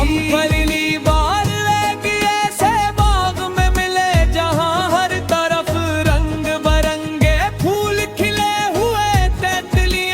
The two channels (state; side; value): identical; both; correlation 1.00